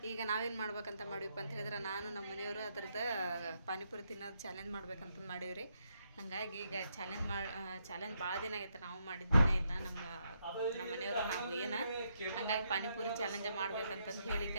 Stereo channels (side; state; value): both; inverted; correlation -0.77